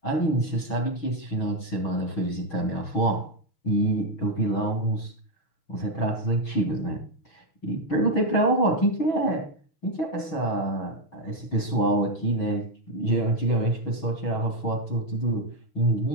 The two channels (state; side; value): late; right; 6.6 ms